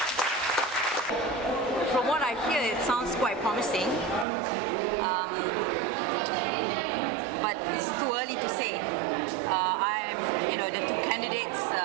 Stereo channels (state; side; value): drops out; left; at 4.2 s